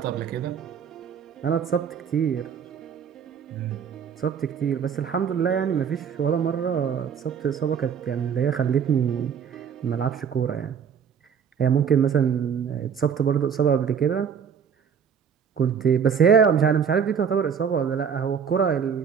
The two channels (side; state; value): left; quieter; 7.3 dB